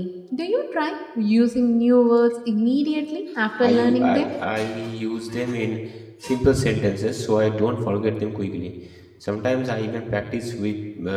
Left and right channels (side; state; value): both; identical; correlation 1.00